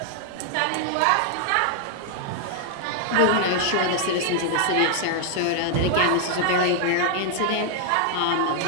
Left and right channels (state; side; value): different; both; correlation 0.00